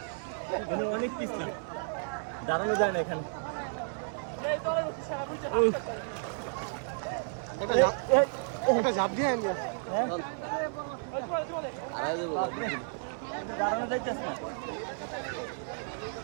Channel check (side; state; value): left; silent; 56 dB below the other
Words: এখানে অনেক পিছলা, দাঁড়ানো যায় না এখানে। এটা ঝাঁপ দিয়ে দাঁড়ানো যাইতেছে না।